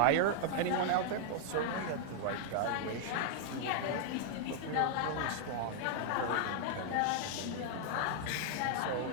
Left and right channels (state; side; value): different; both; correlation -0.01